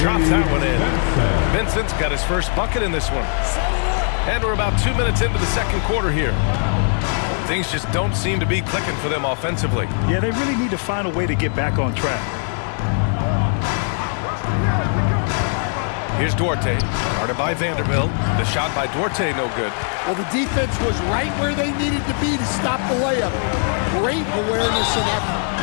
drops that one in. Vincent's got his first bucket in this one. And we're about 2 minutes into the second quarter here. Things just don't seem to be clicking for them offensively. Yeah, they really need to find a way to get back on track. Here's Duarte, guarded by Vanderbilt. The shot by Duarte, no good. Well, the defense was right where they needed to be to stop the layup. Great awareness and effort.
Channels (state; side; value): silent; right; 58 dB below the other